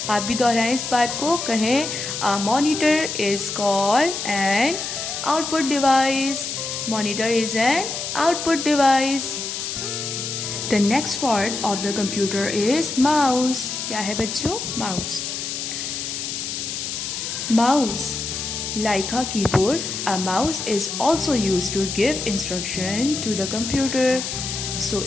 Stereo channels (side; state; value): left; noise; hiss, 4 dB below the sound